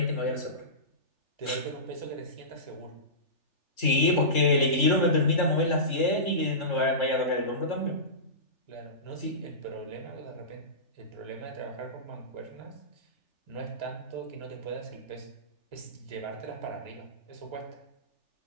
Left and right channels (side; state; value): right; late; 3.7 ms